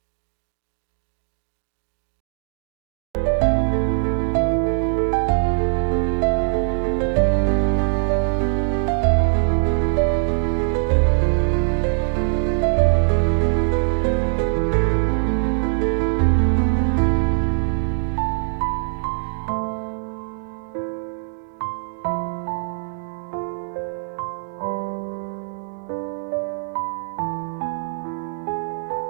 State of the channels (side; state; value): left; silent; digital silence